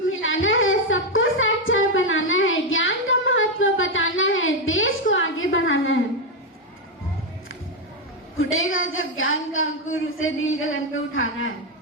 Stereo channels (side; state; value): both; normal; correlation 0.05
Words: मिलाना है, सबको साक्षर बनाना है, ज्ञान का महत्व बताना है, देश को आगे बढ़ाना है। फूटेगा जब ज्ञान का अंकुर, उसे नील गगन पे उठाना है।